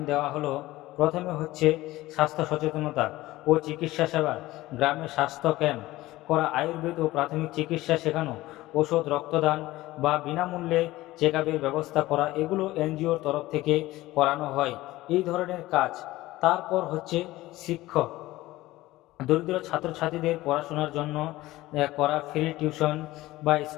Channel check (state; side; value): quieter; right; 17.6 dB